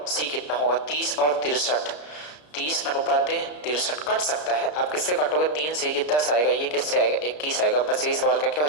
सी कितना होगा। 30 और 63, 30 अनुपात 63 कट सकता है। आप किससे काटोगे, 3 से ये 10 आएगा, ये किससे आएगा 21 आएगा। बस यही सवाल का क्या हो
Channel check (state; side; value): late; right; 33 ms